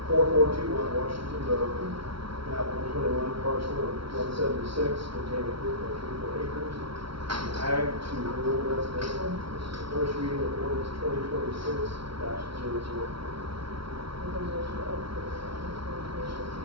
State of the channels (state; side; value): late; left; 0.75 ms